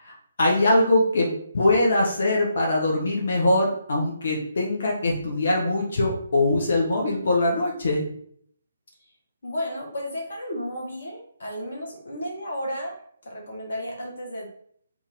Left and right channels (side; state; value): both; inverted; correlation -0.79